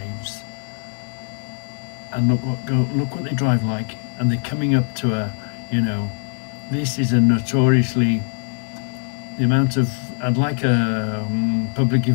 And look what they drive like, and they're coming up to a, you know, this is a notoriously, the amount of, I'd like a public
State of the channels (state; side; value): silent; right; 56 dB below the other